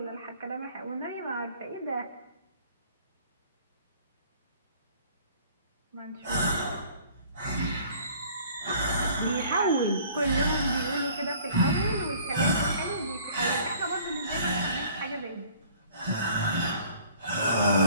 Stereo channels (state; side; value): inverted; both; correlation -0.54